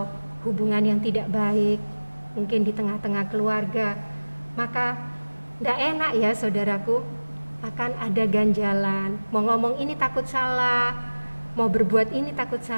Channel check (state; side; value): inverted; both; correlation -1.00